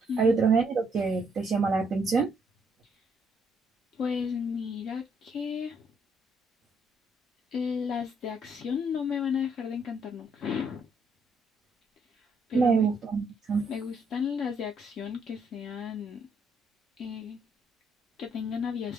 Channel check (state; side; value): normal; both; correlation 0.71